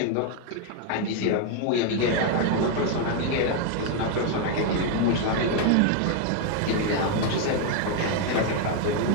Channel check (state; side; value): different; both; correlation 0.01